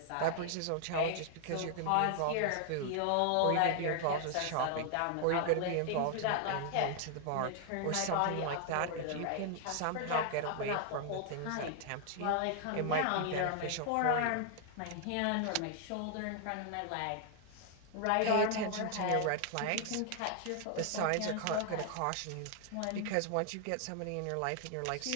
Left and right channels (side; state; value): both; different; correlation 0.00